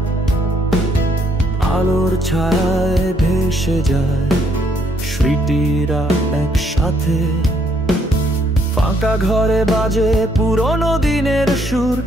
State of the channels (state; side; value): normal; both; correlation 0.70